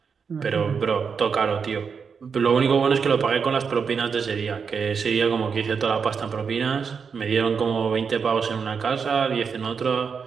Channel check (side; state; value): left; quieter; 6.0 dB